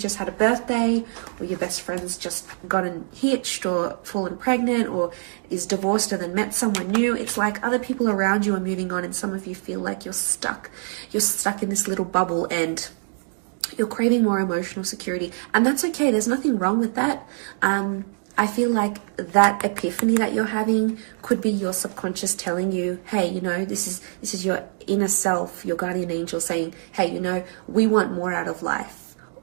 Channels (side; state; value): left; silent; digital silence